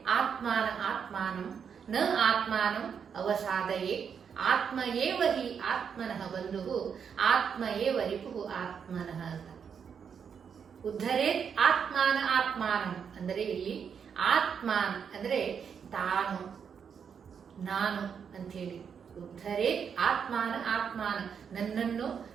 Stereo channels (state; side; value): quieter; left; 7.1 dB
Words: ಆತ್ಮಾನ ಆತ್ಮಾನಂ ನ ಆತ್ಮಾನಂ ಅವಸಾದಯೇ ಆತ್ಮ ಏವ ಹಿ ಆತ್ಮನಃ ಬಂಧು ಆತ್ಮ ಏವ ರಿಪು ಆತ್ಮನಃ ಅಂತ. ಉದ್ಧರೇ ಆತ್ಮಾನ ಆತ್ಮಾನಂ ಅಂದರೆ ಇಲ್ಲಿ ಆತ್ಮಾನ ಅಂದರೆ ತಾನು ನಾನು ಅಂತ ಹೇಳಿ. ಉದ್ಧರೇ ಆತ್ಮಾನ ಆತ್ಮಾನ, ನನ್ನನ್ನು